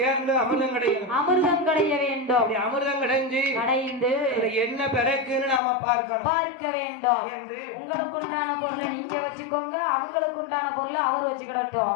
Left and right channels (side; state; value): right; drops out; at 5.6 s